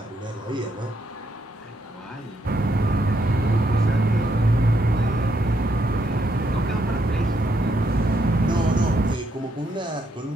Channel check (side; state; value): both; normal; correlation 0.76